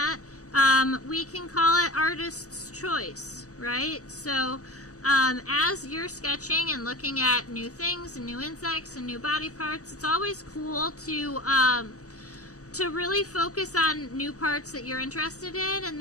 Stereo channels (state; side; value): late; right; 0.66 ms